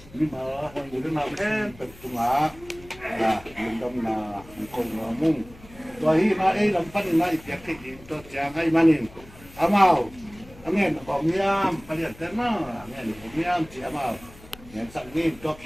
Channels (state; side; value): noise; left; hum, 22 dB below the sound